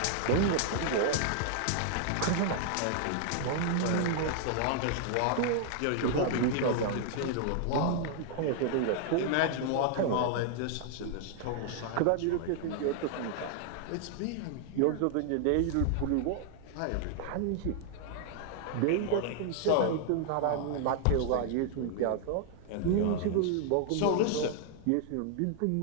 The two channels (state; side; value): different; both; correlation 0.00